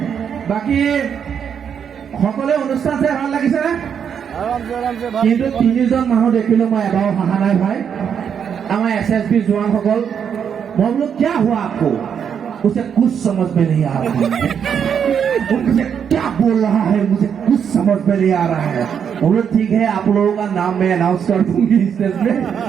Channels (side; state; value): left; quieter; 7.7 dB